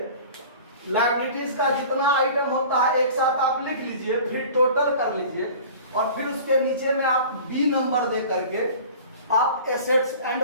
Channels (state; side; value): inverted; both; correlation -0.42